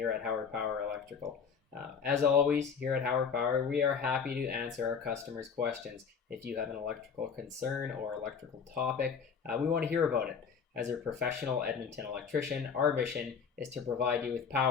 at Hauer Power Electrical. As always, here at Hauer Power, we are happy to answer our customers' questions. If you have an electrical concern or electrical topic, we want to hear about it. As a professional Edmonton electrician, our mission is to provide you with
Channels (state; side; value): quieter; right; 6.3 dB